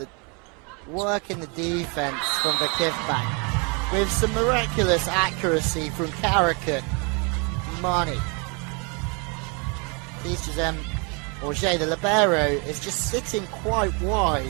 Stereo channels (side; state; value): left; quieter; 33.2 dB